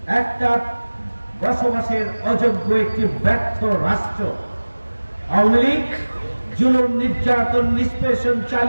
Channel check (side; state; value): both; inverted; correlation -1.00